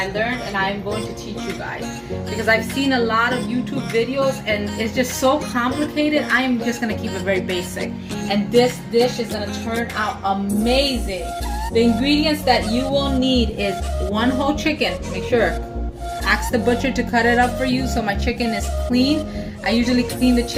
learned and I'm going to teach you guys because I've seen a lot of YouTube videos and it's just so complicated. I'm just gonna keep it very basic, and this dish is gonna turn out amazing. The ingredients that you will need is one whole chicken. Make sure, ask the butcher to cut it up for you so my chicken is clean. I usually clean the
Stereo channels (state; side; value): identical; both; correlation 1.00